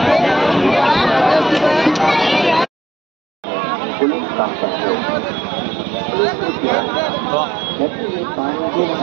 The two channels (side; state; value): left; drops out; at 2.7 s